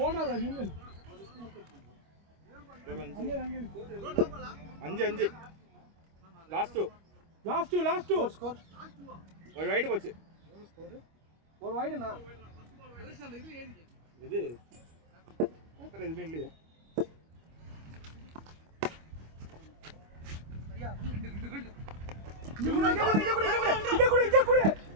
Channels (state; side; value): late; left; 25 ms